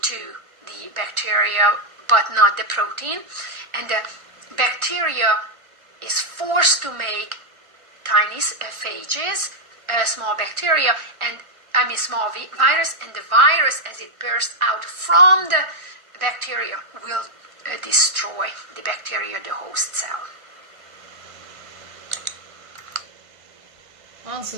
the bacteria, but not the protein, and the bacteria is forced to make tiny phages, small bacteria, and small virus, and the virus, as it bursts out from the bacteria, will destroy the bacteria, the host cell. Answer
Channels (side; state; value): left; late; 1.3 ms